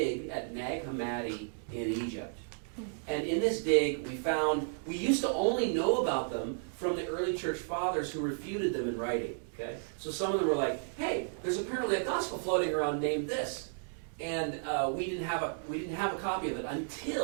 at Nag Hammadi in Egypt. And in this dig, we used to only know about them from the early church fathers who refuted them in writing. Okay, so some of them were like, "Hey, there's apparently a gospel floating around named this," and we didn't have a copy of it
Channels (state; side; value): silent; left; digital silence